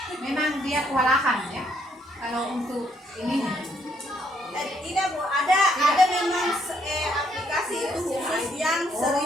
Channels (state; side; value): normal; both; correlation 0.71